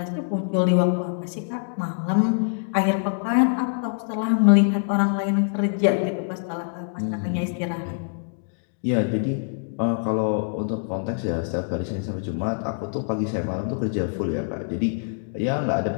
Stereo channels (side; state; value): right; silent; digital silence